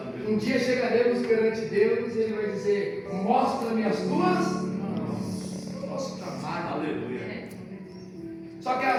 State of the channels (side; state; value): both; identical; correlation 1.00